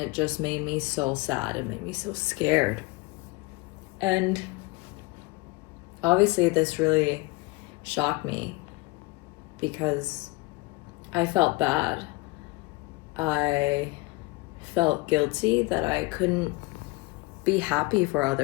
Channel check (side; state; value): right; quieter; 24.1 dB